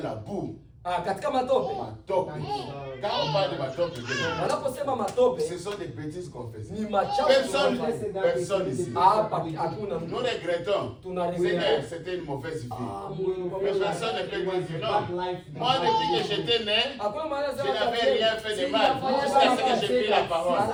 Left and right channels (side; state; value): both; identical; correlation 1.00